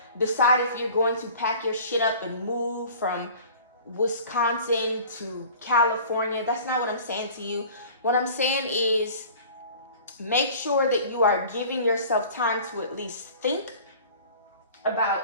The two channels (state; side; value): inverted; both; correlation -0.44